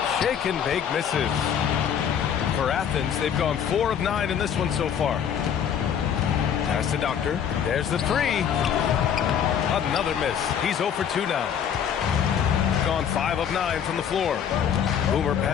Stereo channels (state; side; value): quieter; right; 8.4 dB